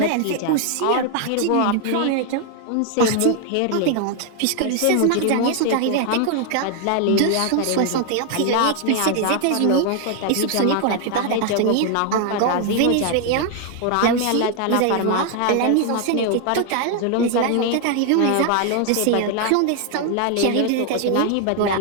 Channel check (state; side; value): different; both; correlation 0.00